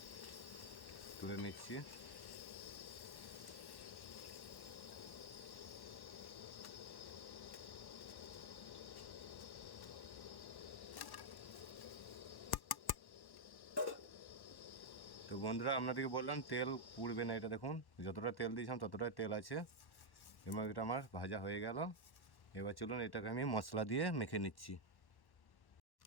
তুলে নিচ্ছি। তো বন্ধুরা আপনাদেরকে বললাম তেল পুড়বে না, এটা দেখুন যতটা তেল দিয়েছিলাম ততটাই তেল আছে এবং এটা আমার ভাজা হয়ে গেল। এবার চলুন এটাকে আমি মশলা দিয়ে মেখে নিচ্ছি।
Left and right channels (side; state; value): right; late; 1.1 ms